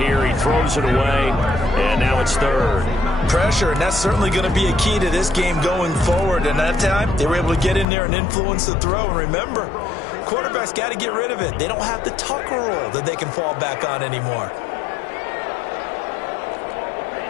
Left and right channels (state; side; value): drops out; right; at 7.9 s